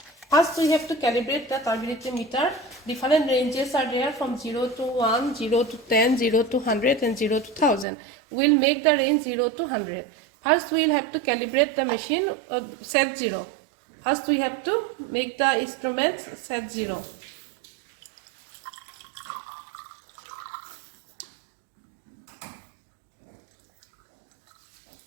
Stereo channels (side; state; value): left; drops out; at 7.9 s